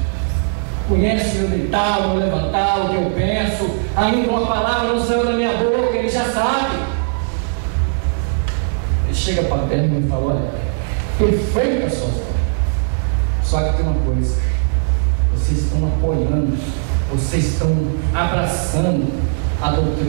Conhece o meu deitar, o meu levantar, o que eu penso. Ainda uma palavra não saiu da minha boca, ele já sabe. Ele chega para perto e me fala: olha, perfeito as suas obras. Só que tem uma coisa: vocês estão apoiando, vocês estão abraçando a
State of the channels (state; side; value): silent; left; digital silence